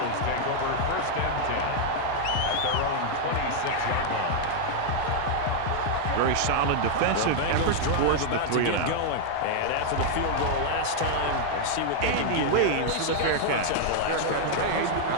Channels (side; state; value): both; different; correlation 0.00